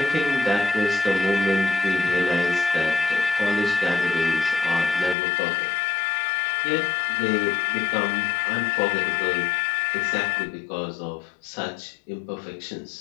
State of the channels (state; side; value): drops out; right; at 5.2 s